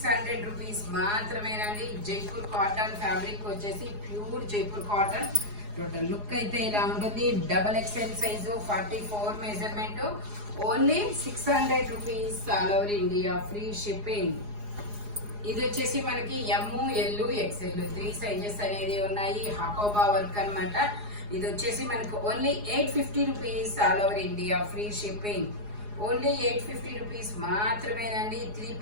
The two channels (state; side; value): late; left; 4.8 ms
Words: rupees మాత్రమేనండి. జైపూర్ కాటన్ ఫ్యాబ్రిక్ వచ్చేసి pure Jaipur cotton. Total look అయితే ఇలా ఉంటుంది. Double XL size 44 measurement. Only 600 rupees, all over India free shipping. ఇది వచ్చేసి మనకి ఎమ్, ఎల్, ఎక్స్ఎల్ 3 సైజెస్ అనేది ఉన్నాయి. హకోబా వర్క్ అన్నమాట. ఇది వచ్చేసి మనకు only 850 rupees, all over India free shipping. Only 850 rupees మాత్రమేనండి. 3